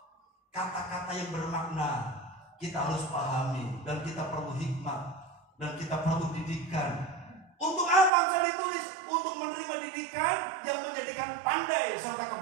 Kata-kata yang bermakna kita harus pahami, dan kita perlu hikmat, dan kita perlu didikan. Untuk apa Amsal ditulis? Untuk menerima didikan yang menjadikan pandai serta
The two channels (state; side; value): drops out; left; at 8.1 s